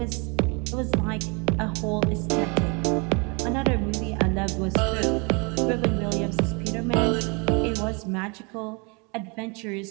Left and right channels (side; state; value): left; quieter; 31.5 dB